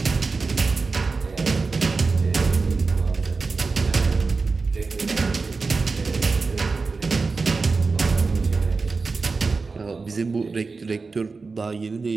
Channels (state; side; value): quieter; left; 4.2 dB